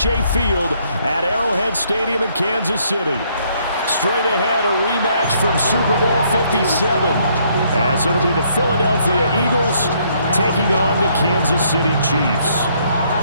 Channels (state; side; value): inverted; both; correlation -0.68